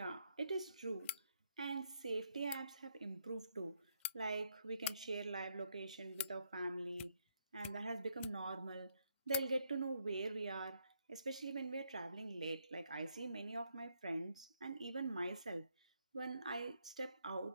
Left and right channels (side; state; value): both; inverted; correlation -0.75